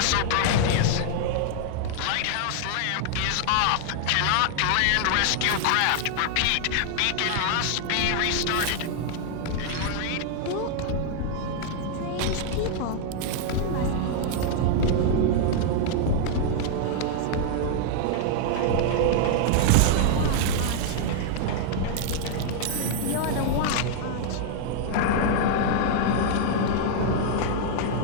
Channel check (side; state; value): both; different; correlation 0.00